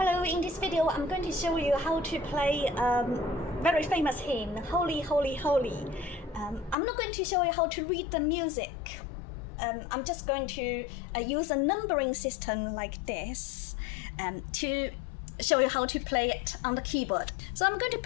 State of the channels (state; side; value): drops out; right; at 6.8 s